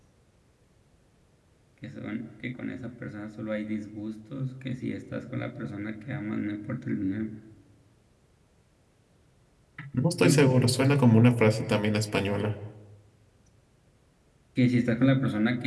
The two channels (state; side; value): identical; both; correlation 1.00